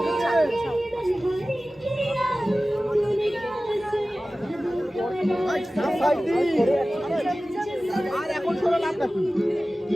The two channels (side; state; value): both; normal; correlation 0.96